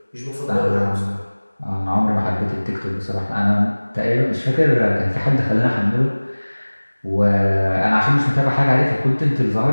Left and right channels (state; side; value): inverted; both; correlation -1.00